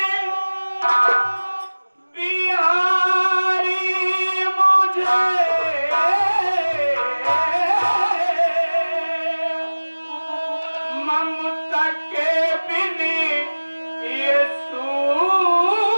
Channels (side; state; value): both; inverted; correlation -1.00